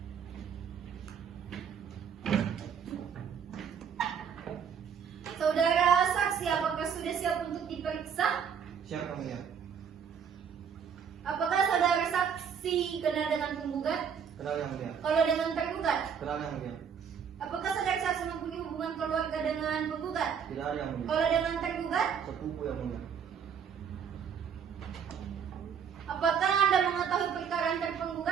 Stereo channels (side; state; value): left; quieter; 7.3 dB